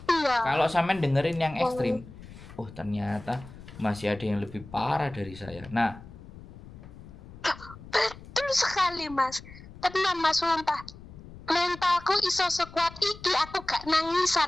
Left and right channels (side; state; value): left; noise; rumble, 17 dB below the sound